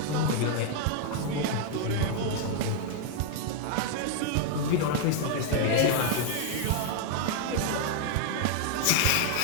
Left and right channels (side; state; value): both; different; correlation 0.00